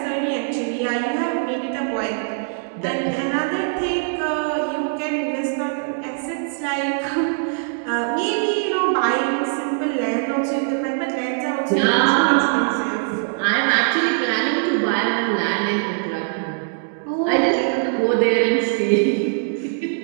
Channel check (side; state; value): left; silent; digital silence